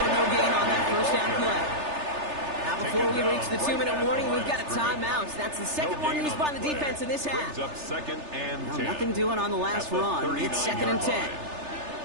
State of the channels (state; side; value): late; left; 3.3 ms